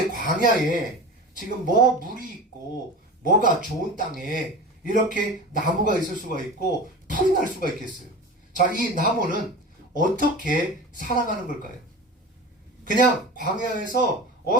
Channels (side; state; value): both; normal; correlation 0.31